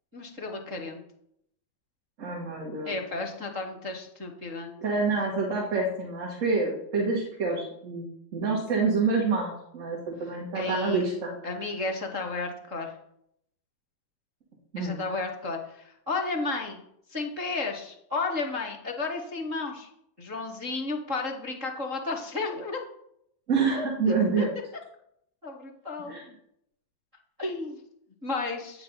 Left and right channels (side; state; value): left; late; 3.8 ms